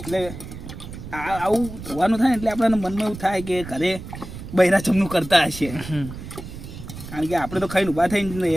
એટલે આવું ધોવાનું થાય ને એટલે આપણને મનમાં એવું થાય કે ઘરે બૈરા જમનું કરતા હશે. કારણ કે આપણે તો ખાઈને ઊભા થઈને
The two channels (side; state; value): right; noise; rumble, 12 dB below the sound